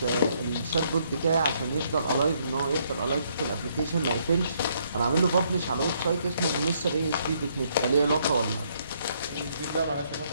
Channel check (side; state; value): both; inverted; correlation -0.71